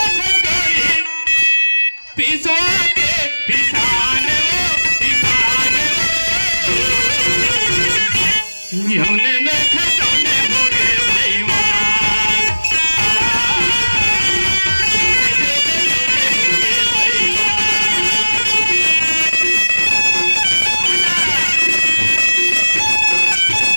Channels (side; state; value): both; inverted; correlation -1.00